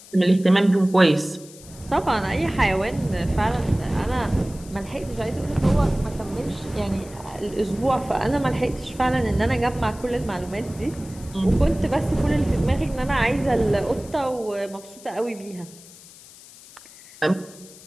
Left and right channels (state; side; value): noise; left; hiss, 20 dB below the sound